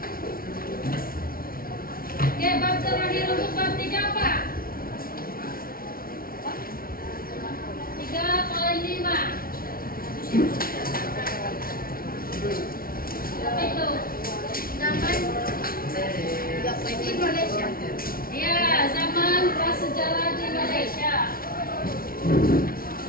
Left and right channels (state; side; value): late; right; 0.43 ms